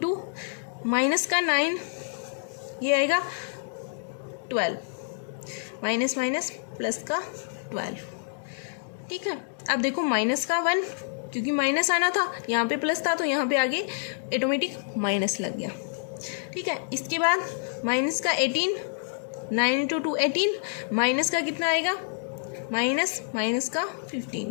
माइनस का 9, ये आएगा 12 माइनस प्लस का 12, ठीक है। अब देखो माइनस का 1, क्योंकि माइनस आना था यहाँ पे प्लस था तो यहाँ पे आगे ऑटोमेटिक माइनस लग गया, ठीक है। इसके बाद माइनस का 18, 9 इंटू 2 18, माइनस का कितना आएगा माइनस का 15।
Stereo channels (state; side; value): silent; right; digital silence